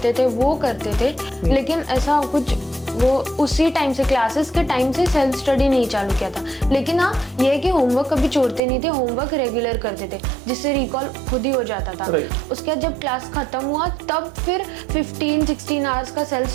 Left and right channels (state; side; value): drops out; left; at 8.6 s